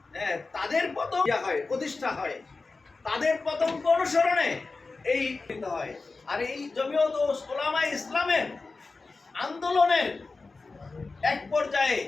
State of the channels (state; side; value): quieter; right; 3.8 dB